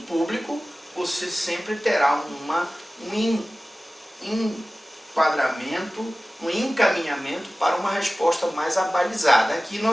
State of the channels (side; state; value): both; normal; correlation 0.97